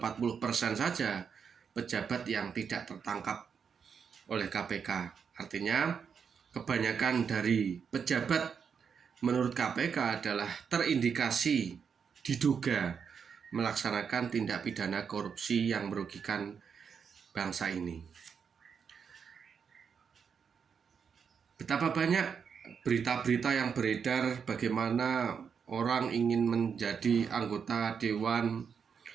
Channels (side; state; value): left; quieter; 6.6 dB